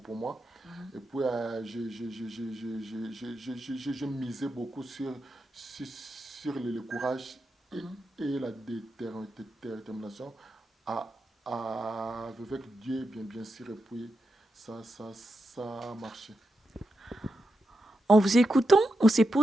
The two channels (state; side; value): normal; both; correlation 0.87